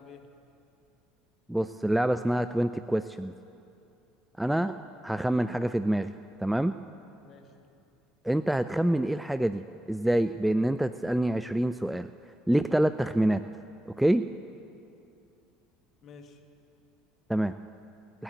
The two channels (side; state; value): both; normal; correlation 0.97